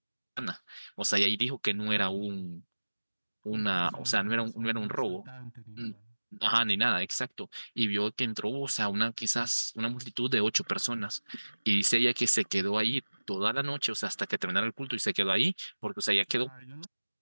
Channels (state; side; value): inverted; both; correlation -1.00